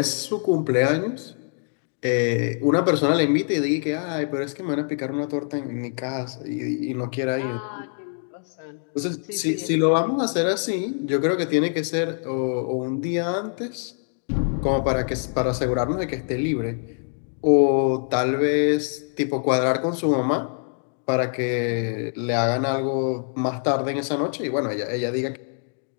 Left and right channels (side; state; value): right; silent; 62 dB below the other